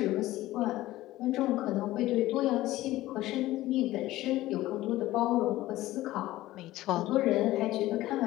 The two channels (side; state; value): right; quieter; 16.3 dB